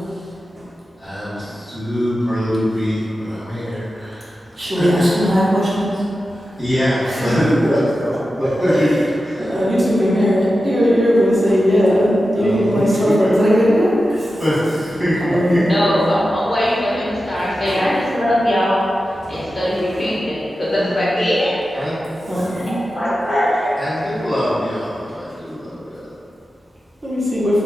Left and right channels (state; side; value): normal; both; correlation 0.92